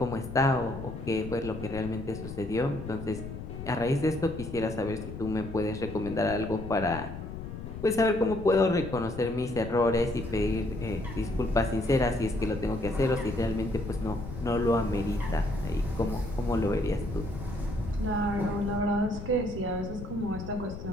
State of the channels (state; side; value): noise; left; rumble, 9 dB below the sound